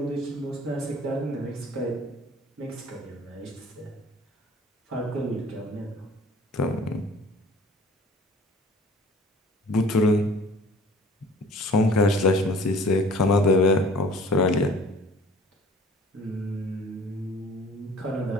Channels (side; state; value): both; normal; correlation 0.50